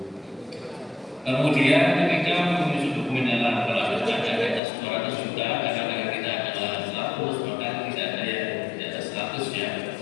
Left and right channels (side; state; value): right; drops out; at 4.6 s